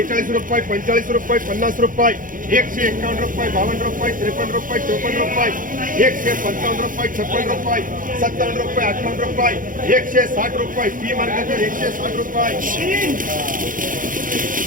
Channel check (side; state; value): left; late; 0.39 ms